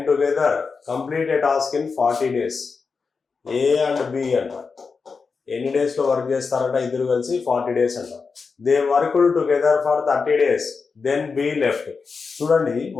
together complete a task in 40 days. A and B అంట ఎన్ని డేస్ లో వర్క్ చేస్తారంట? ఇద్దరు కలిసి 40 days అంట. They worked together for 30 days, then B left. చూడండి,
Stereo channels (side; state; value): right; quieter; 4.9 dB